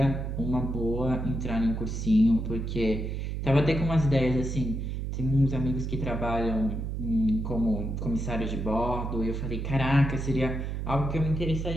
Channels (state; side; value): noise; right; hum, 3 dB below the sound